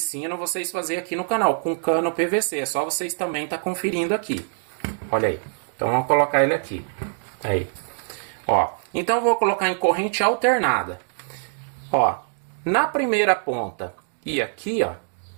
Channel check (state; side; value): silent; left; digital silence